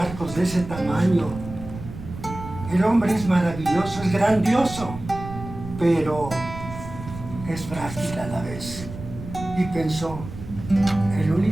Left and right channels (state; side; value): noise; right; rumble, 12 dB below the sound